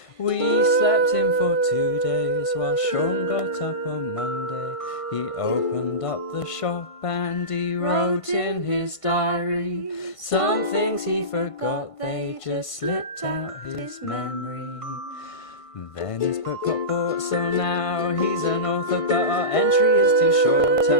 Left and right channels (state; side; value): late; right; 1.5 ms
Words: We slept in for 2 days while Sean got up on Monday. He opened up the shop and he wrote in his diary some things he forgot, they just slipped out his memory. Then his book got bought, so now he's an author, but our entry is too short,